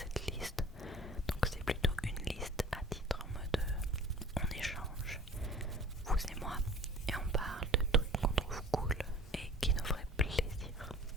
liste. Donc c'est plutôt une liste à titre en mode on échange, vous et moi, et on parle de trucs qu'on trouve cool et qui nous feraient plaisir.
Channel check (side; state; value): both; normal; correlation 0.45